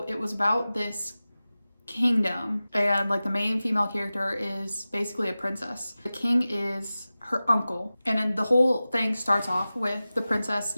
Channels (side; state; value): both; inverted; correlation -0.96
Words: it was about this kingdom and like the main female character is basically a princess. The king is her uncle, and then the whole thing starts off with the princess